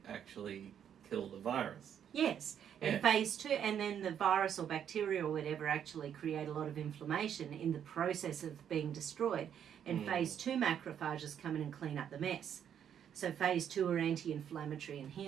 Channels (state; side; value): quieter; left; 8.9 dB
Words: actually kill the virus. Yes, and phase 2, and then the virus or bacteria or whatever actually create a lot of inflammation in the process of being destroyed. And phase 2 macrophages come in and clean up the mess. So phase 2 are anti-inflammatory and